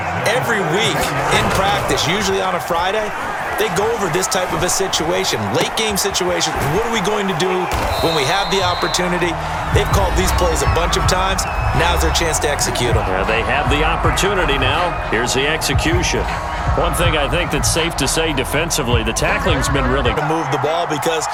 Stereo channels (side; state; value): both; identical; correlation 1.00